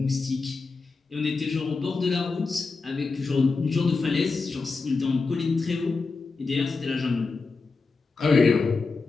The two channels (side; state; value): right; quieter; 4.2 dB